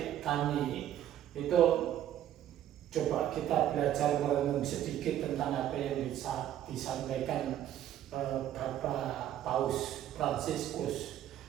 kami itu, coba kita belajar merenung sedikit tentang apa yang disampaikan Bapak Paus Fransiskus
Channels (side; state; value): left; quieter; 11.6 dB